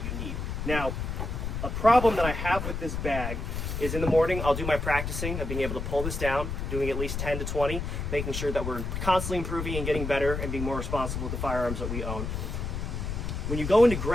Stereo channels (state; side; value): noise; left; rumble, 4 dB below the sound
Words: need. Now, a problem that I have with this bag is in the morning, I'll do my practicing of being able to pull this down, doing at least 10 to 20, making sure that we're constantly improving and getting better and being more responsible with the firearms that we own. When you go into